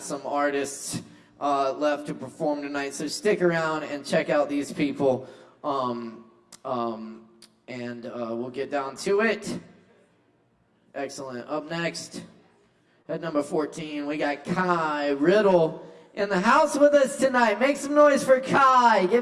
artists left to perform tonight, so stick around and check out these people, and we'll get down to it. Excellent. Up next, at number 14, we got Kai Riddle in the house with us tonight. Make some noise for Kai.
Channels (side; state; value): both; identical; correlation 1.00